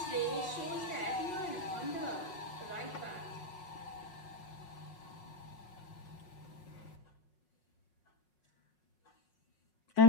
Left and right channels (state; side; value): late; right; 5.5 ms